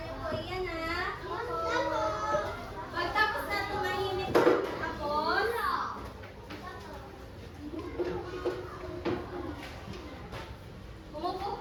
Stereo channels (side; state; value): both; identical; correlation 1.00